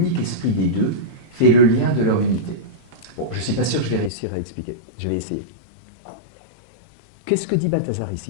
esprit des deux, fait le lien de leur unité. Bon, je ne suis pas sûr que je vais réussir à l'expliquer. Je vais essayer. Qu'est-ce que dit Balthazar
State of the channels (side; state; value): right; drops out; at 4.1 s